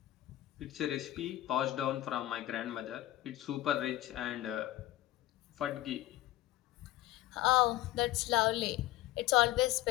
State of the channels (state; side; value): quieter; right; 15.4 dB